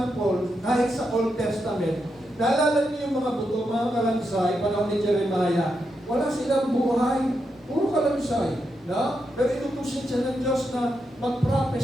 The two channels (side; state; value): both; normal; correlation 0.84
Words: kahit sa Old Testament, naalala niyo yung mga buto, mga kalansay, panahon ni Jeremiah, wala silang buhay, puro kalansay. Pero inutusin siya ng Diyos na